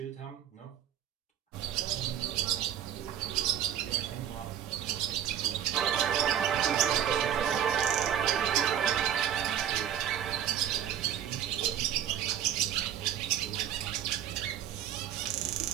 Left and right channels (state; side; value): quieter; left; 10.0 dB